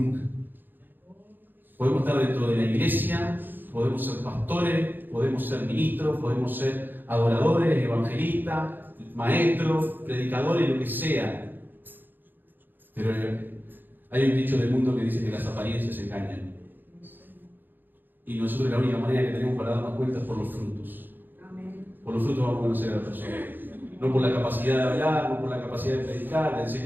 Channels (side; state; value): left; late; 0.091 ms